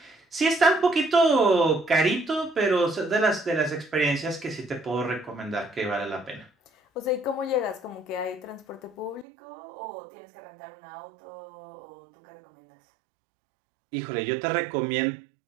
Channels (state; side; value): drops out; left; at 9.2 s